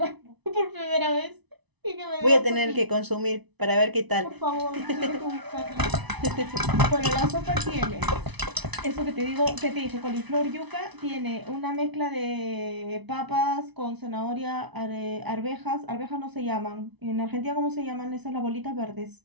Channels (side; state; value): left; late; 1.0 ms